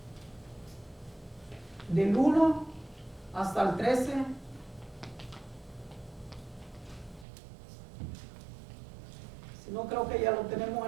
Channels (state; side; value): drops out; left; at 7.2 s